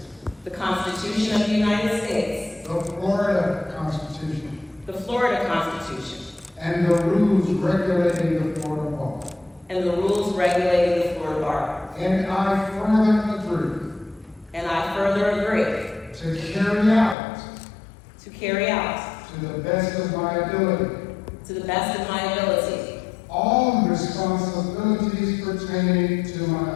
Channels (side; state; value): right; drops out; at 17.2 s